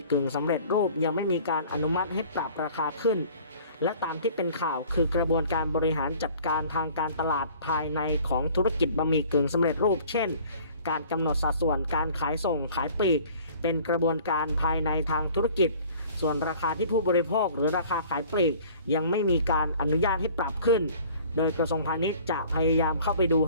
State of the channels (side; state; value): both; inverted; correlation -0.50